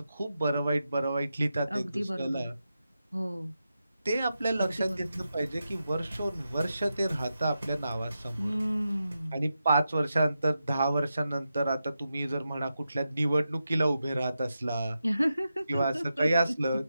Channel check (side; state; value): both; inverted; correlation -0.89